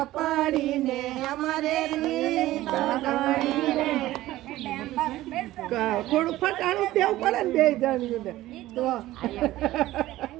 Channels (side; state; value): left; quieter; 15.9 dB